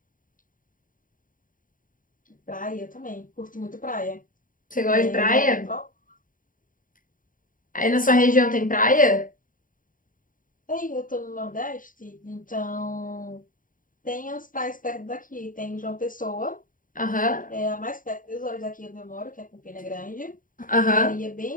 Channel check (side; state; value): right; late; 0.39 ms